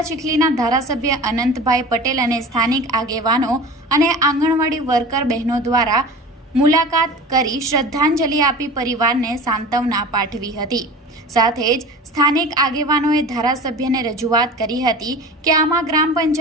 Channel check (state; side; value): normal; both; correlation 0.36